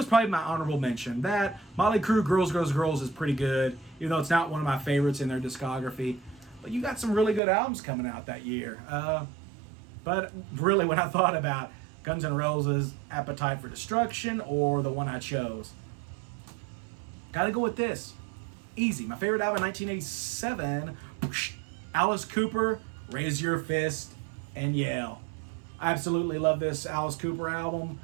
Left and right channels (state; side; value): drops out; left; at 7.4 s